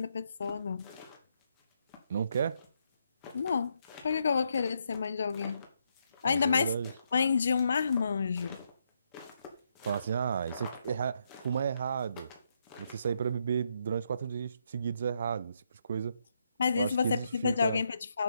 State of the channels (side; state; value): both; inverted; correlation -0.78